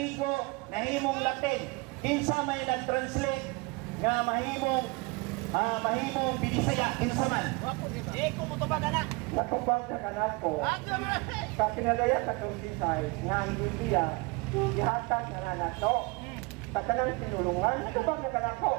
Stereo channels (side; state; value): left; quieter; 26.8 dB